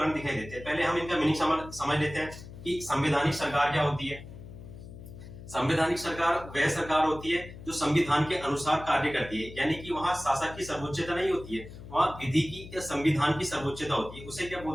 दिखाई देते हैं। पहले हम इनका मीनिंग समझ लेते हैं कि संवैधानिक सरकार क्या होती है। संवैधानिक सरकार वह सरकार होती है जो संविधान के अनुसार कार्य करती है, यानी कि वहां शासक की सर्वोच्चता नहीं होती है, वहां विधि की या संविधान की सर्वोच्चता होती है। उसे क्या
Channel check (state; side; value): noise; left; hum, 15 dB below the sound